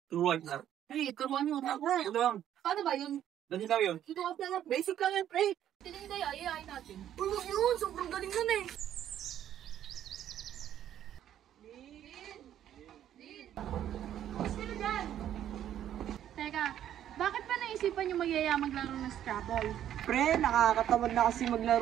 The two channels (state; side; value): quieter; left; 10.9 dB